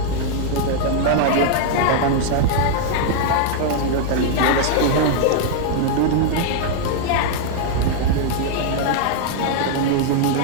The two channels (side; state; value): both; different; correlation 0.00